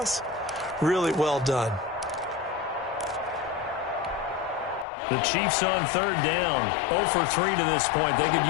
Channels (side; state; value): right; drops out; at 4.9 s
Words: Really well done. The Chiefs on third down. 0 for 3 to this point. They could